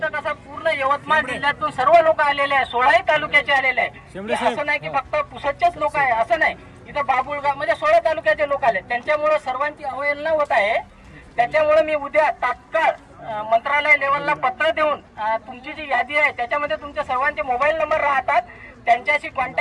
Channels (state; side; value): identical; both; correlation 1.00